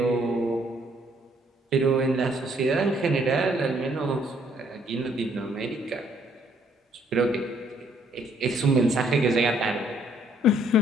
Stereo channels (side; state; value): both; normal; correlation 0.66